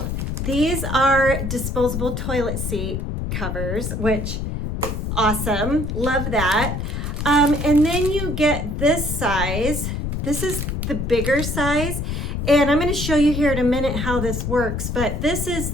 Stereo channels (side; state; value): left; noise; rumble, 3 dB below the sound